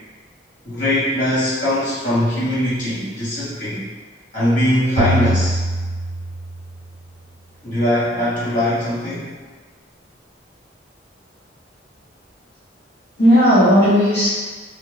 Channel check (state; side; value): normal; both; correlation 0.57